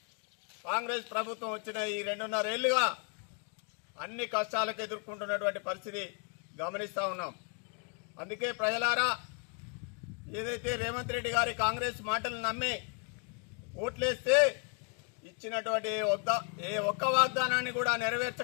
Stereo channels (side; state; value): right; quieter; 39.6 dB